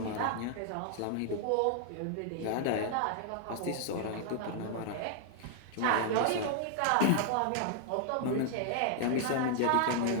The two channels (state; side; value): different; both; correlation 0.00